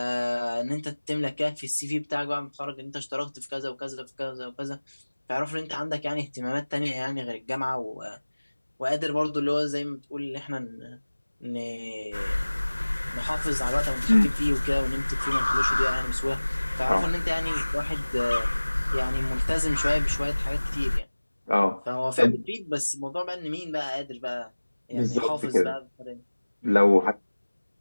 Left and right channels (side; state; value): both; inverted; correlation -1.00